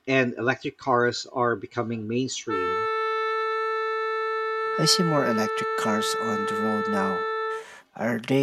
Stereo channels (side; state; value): both; identical; correlation 1.00